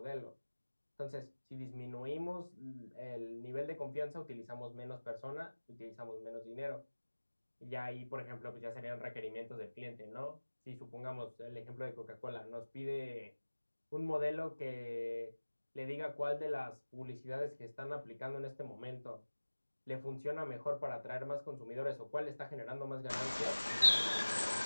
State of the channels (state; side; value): inverted; both; correlation -1.00